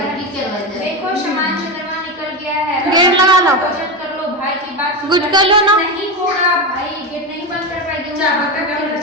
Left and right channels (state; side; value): normal; both; correlation 0.16